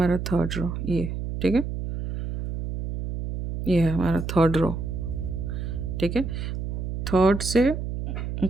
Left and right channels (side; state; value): right; noise; hum, 4 dB below the sound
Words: थर्ड रो, ये ठीक है, ये है हमारा थर्ड रो। ठीक है, थर्ड से